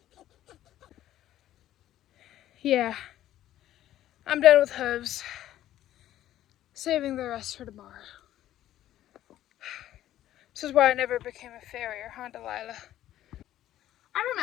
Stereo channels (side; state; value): right; quieter; 12.9 dB